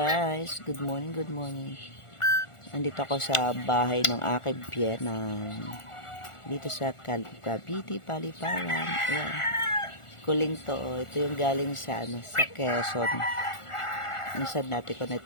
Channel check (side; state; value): right; late; 1.4 ms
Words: Good morning, good morning. Nandito ako sa bahay ng aking biyenan. Dito sa Cavite, Paliparan. Ayan. Kuling to. Ito yung galing sa, sa Quezon. Minsan natin ko na